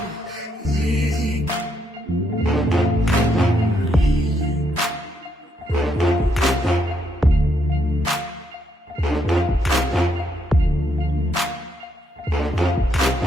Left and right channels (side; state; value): both; normal; correlation 0.75